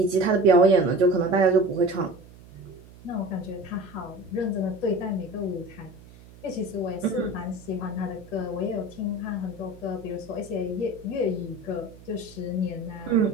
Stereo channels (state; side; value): noise; right; hum, 21 dB below the sound